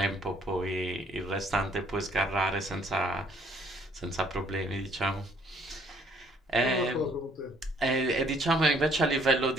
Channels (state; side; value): normal; both; correlation 0.63